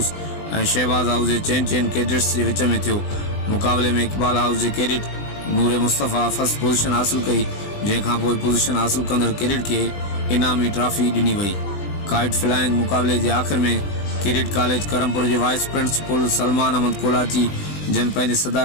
और शहबाज हाउस के चैन कैडेट्स के विच में थियो। मुकाबले में इकबाल हाउस के कैडेट नूर मुस्तफ़ा फर्स्ट पोजीशन हासिल कई, जैखां पोइ पोजीशन हासिल कंदड़ कैडेट के इनामी ट्रॉफी ॾिनी वई। काइट फ्लाइंग मुकाबले के आखिर में किरीट कॉलेज करमपुर के वाइस प्रिंसिपल सलमान अहमद कोलाची जन पंहिंजे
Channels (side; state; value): right; late; 20 ms